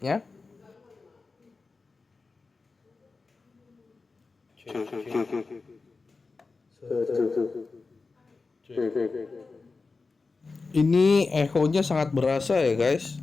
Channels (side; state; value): right; quieter; 4.1 dB